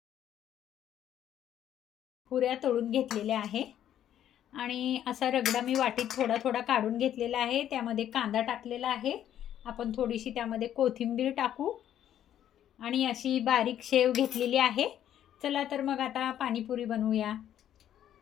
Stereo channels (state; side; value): quieter; right; 10.8 dB